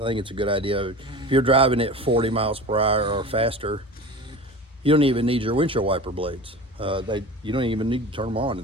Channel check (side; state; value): both; normal; correlation 0.35